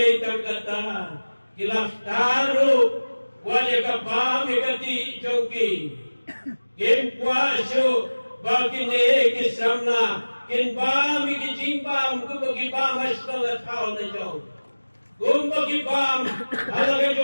tangkata kilaf taru wale kabam ikati jogi. Kim kuasu bagi ne kisamna kin bam ikijimbam kubagi bam asnga thau na jong. Kumbagi bam alaga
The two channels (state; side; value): inverted; both; correlation -1.00